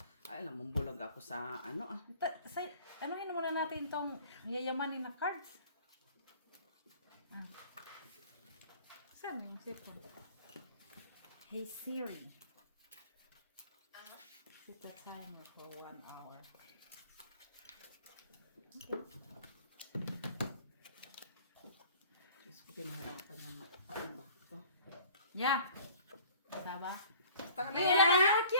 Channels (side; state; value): both; inverted; correlation -0.50